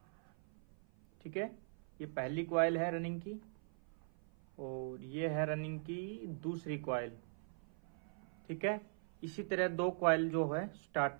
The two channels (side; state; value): left; silent; 50 dB below the other